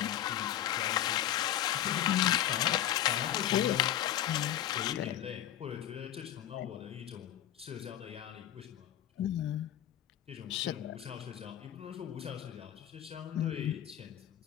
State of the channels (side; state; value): right; quieter; 11.8 dB